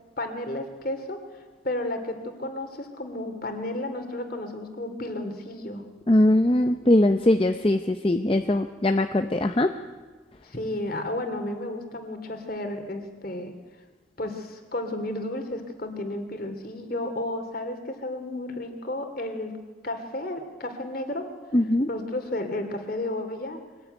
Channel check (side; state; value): both; normal; correlation 0.67